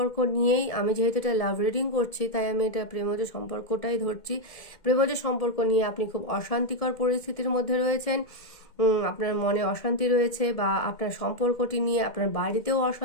নিয়েই, আমি যেহেতু এটা লাভ রিডিং করছি তাই আমি এটা প্রেমজ সম্পর্কটাই ধরছি। প্রেমজ সম্পর্ক নিয়ে আপনি খুব অশান্তিকর পরিস্থিতির মধ্যে রয়েছেন, আপনার মনে অশান্তি রয়েছে, বা আপনার সম্পর্কটি নিয়ে আপনার বাড়িতেও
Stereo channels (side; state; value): right; late; 2.1 ms